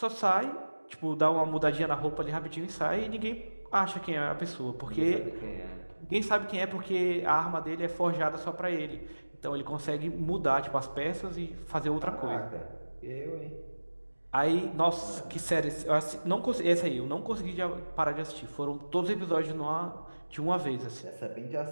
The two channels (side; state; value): both; inverted; correlation -1.00